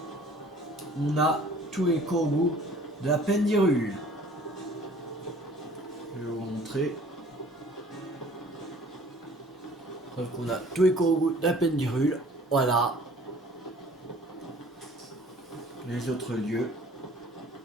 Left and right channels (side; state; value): both; normal; correlation 0.51